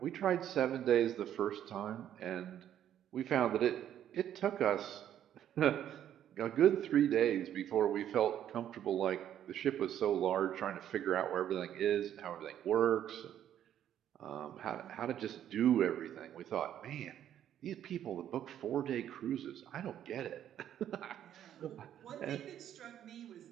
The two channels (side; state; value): left; quieter; 10.6 dB